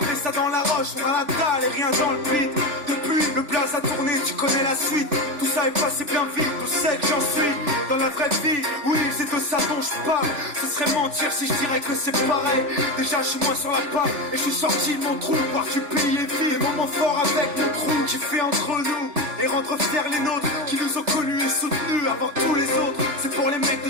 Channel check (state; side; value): late; left; 3.4 ms